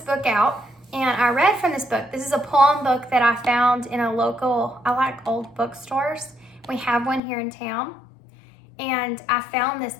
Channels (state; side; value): drops out; right; at 7.2 s